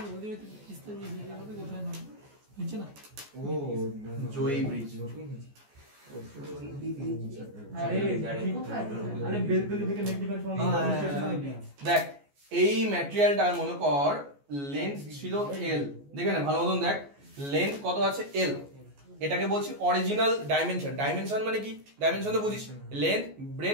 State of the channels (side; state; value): left; late; 14 ms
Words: জয়ী ব্রিজ, দেখ এই ম্যাটেরিয়ালটার মনে কর লেন্থ ছিল এল, দেখে না ভালো মতন দেখ, লেন্থ কত আছে এল, এটাকে বলছি অরিজিনাল ডাইমেনশন। ডাইমেনশন মানে কি, ডাইমেনশন তো বুঝিস, লেন্থ,